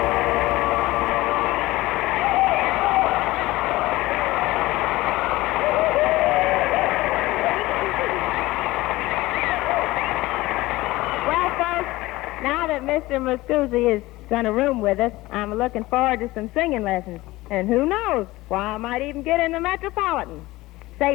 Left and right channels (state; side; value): quieter; right; 19.0 dB